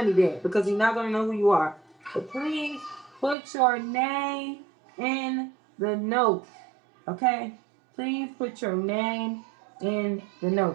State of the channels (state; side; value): drops out; left; at 3.4 s